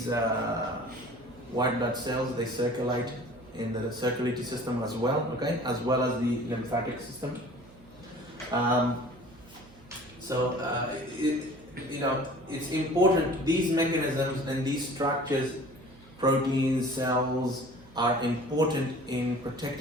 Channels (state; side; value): noise; right; hum, 24 dB below the sound